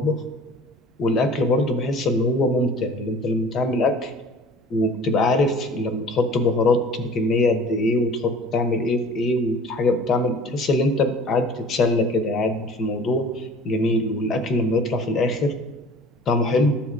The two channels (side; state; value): both; normal; correlation 0.46